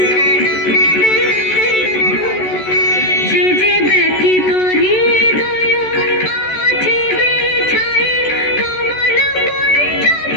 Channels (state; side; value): late; right; 14 ms